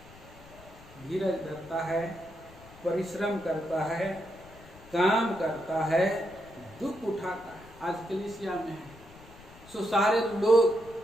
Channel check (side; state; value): left; noise; rumble, 21 dB below the sound